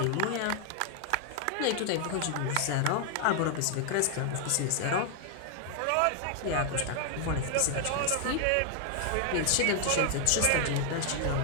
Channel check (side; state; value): both; different; correlation 0.00